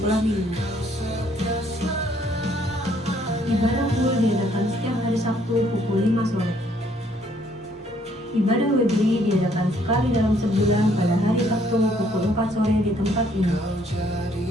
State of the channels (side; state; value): both; normal; correlation 0.66